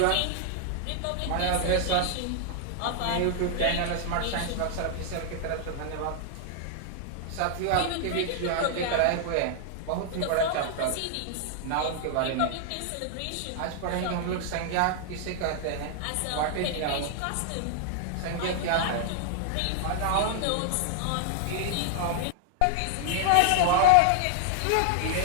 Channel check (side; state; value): both; different; correlation 0.00